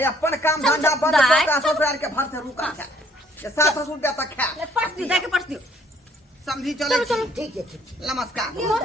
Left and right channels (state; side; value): normal; both; correlation 0.63